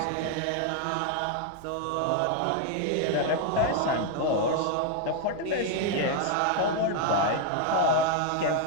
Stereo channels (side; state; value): both; different; correlation 0.00